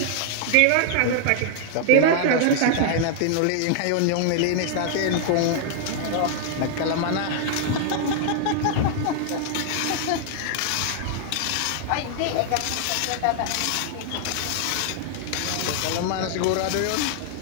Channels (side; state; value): both; different; correlation 0.00